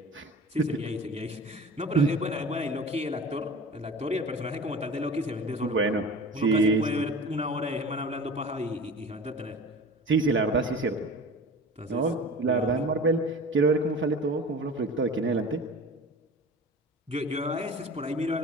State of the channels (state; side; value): normal; both; correlation 0.37